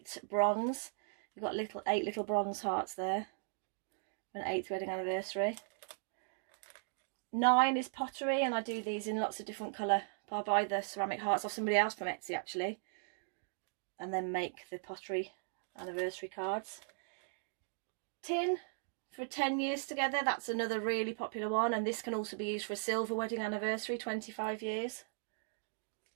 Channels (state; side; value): silent; left; digital silence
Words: bronze. We've got 8 little bronze hearts there for an 8th wedding anniversary. 9 is pottery, and I do these in lots of different colour. I buy the ceramic hearts off somebody else from Etsy actually, and then make the pottery anniversary cards. Tin for 10 years together, that's another really popular one, and this can also be used for a silver wedding anniversary, 25 years.